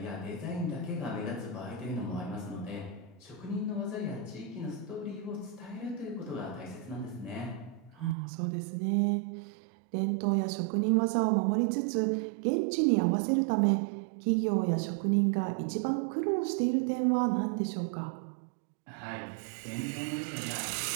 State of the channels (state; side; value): drops out; left; at 8.2 s